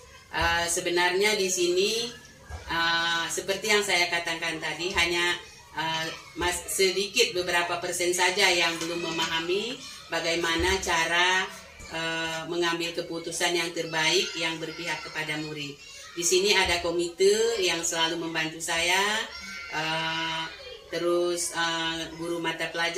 Sebenarnya di sini seperti yang saya katakan tadi, hanya sedikit beberapa persen saja yang belum memahami bagaimana cara mengambil keputusan yang terbaik yang berpihak kepada murid. Di sini ada komite yang selalu membantu saya, terus guru mata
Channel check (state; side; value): identical; both; correlation 1.00